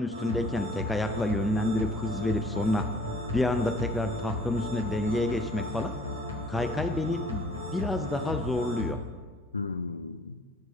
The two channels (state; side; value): normal; both; correlation 0.55